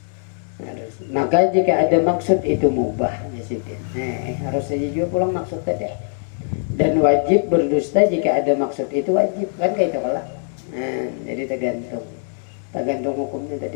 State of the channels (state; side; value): silent; right; digital silence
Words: Harus. Maka jika ada maksud itu mubah di sini. Harus saja juga pulang maksud tadi. Dan wajib berdusta jika ada maksud itu wajib kan kayak itu kalah. Jadi tergantung hukumnya